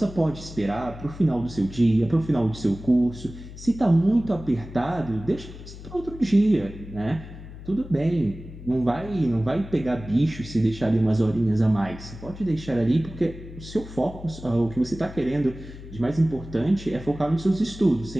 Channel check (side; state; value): left; noise; hum, 14 dB below the sound